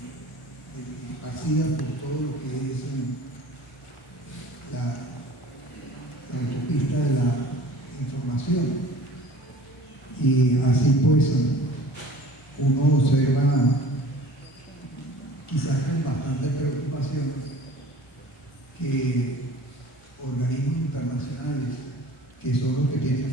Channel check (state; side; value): normal; both; correlation 0.44